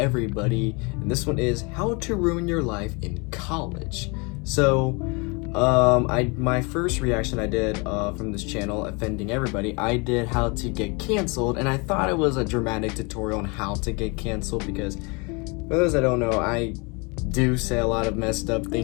and this one is how to ruin your life in college. So my first reaction I did from this channel, Offending Everybody, I did how to get canceled, and I thought it was a dramatic tutorial on how to get canceled because for those that don't know, I do say a lot of messed up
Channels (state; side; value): quieter; right; 29.8 dB